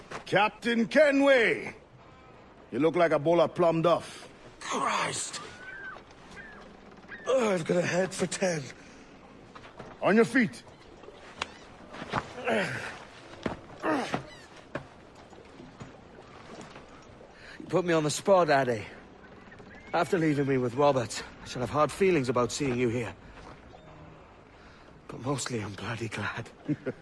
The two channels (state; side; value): identical; both; correlation 1.00